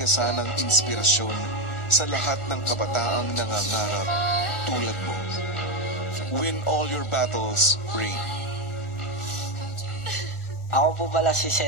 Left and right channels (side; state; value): right; late; 1.4 ms